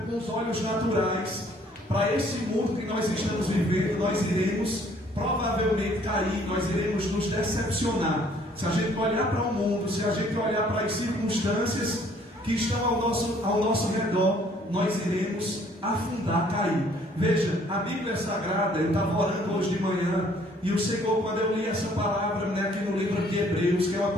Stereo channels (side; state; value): both; normal; correlation 0.60